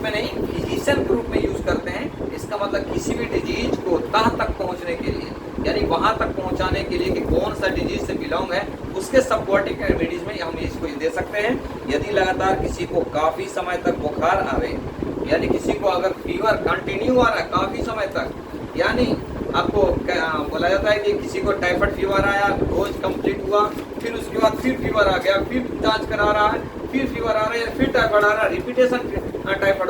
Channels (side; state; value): both; identical; correlation 1.00